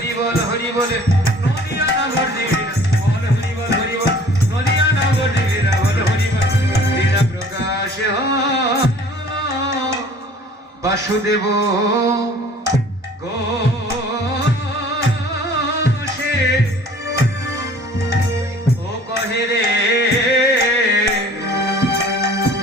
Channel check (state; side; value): normal; both; correlation 0.50